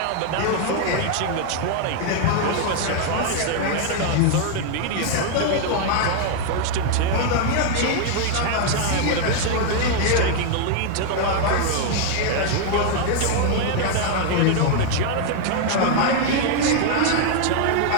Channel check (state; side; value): different; both; correlation 0.00